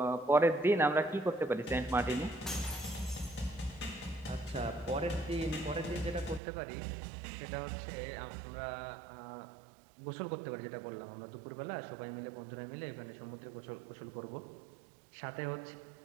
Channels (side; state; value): left; drops out; at 6.4 s